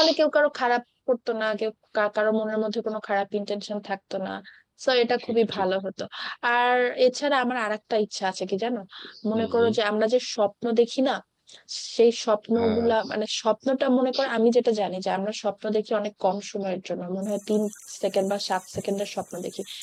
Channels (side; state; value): both; identical; correlation 1.00